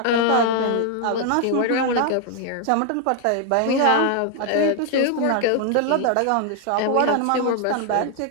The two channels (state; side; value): different; both; correlation 0.00